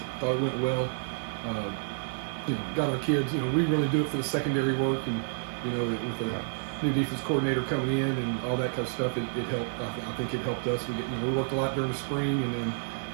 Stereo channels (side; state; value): left; silent; digital silence